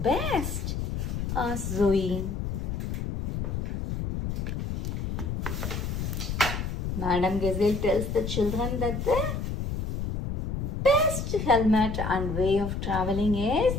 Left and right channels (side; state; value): left; noise; rumble, 3 dB below the sound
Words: Asked Zoe. Madame Gazelle tells the children that the best helmet and way of traveling is